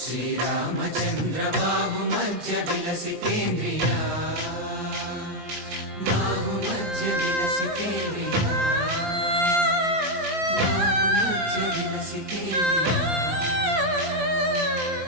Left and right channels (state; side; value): late; left; 17 ms